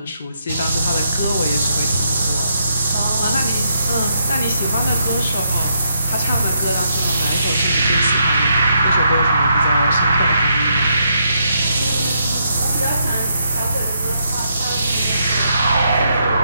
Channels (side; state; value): both; inverted; correlation -0.77